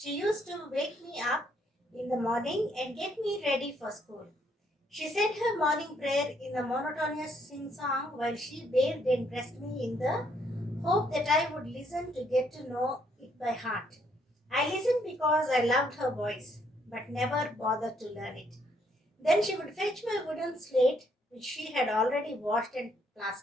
used to wake me up in the morning and get me ready for school. She said her morning prayer in a monotonous sing song while she bathed and dressed me in the hope that I would listen to get to know it by heart. I listened because I loved her voice, but never bothered to learn it. Then she would fetch my wooden slate, which she had already washed and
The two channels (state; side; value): normal; both; correlation 0.70